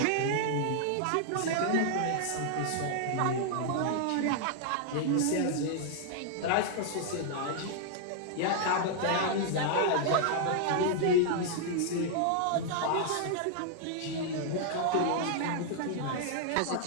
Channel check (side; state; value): both; different; correlation -0.01